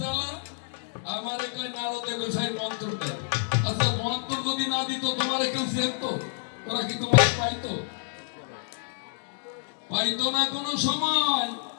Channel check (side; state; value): right; silent; digital silence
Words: জ্বালা? আমারে কই নারদে গোসাই মন্ত্র দেয়। আচ্ছা, মন্ত্র যদি না দিত তোমারে কেউ চেনতো? ওরা কি তোমার পাইতো? পাইতো না কোনো সময়।